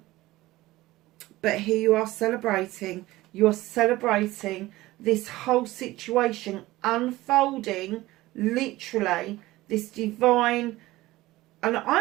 here you are celebrating. You're celebrating this whole situation unfolding, literally, this divine, and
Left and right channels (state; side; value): quieter; left; 17.9 dB